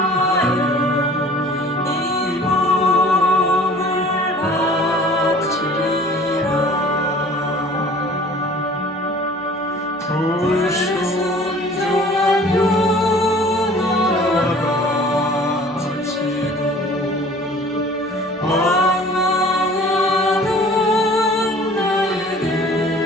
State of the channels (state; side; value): normal; both; correlation 0.49